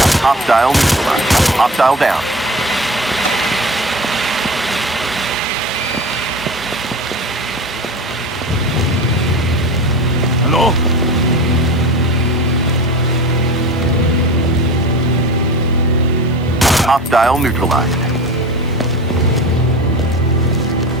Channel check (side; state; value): both; normal; correlation 0.32